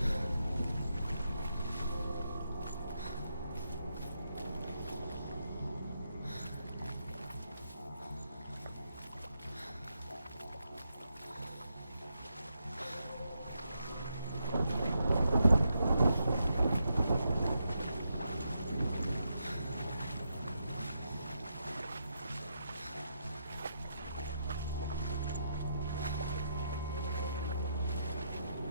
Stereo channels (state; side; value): inverted; both; correlation -0.81